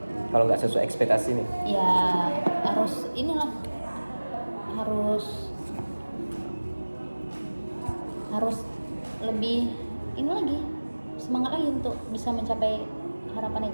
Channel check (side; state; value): both; inverted; correlation -1.00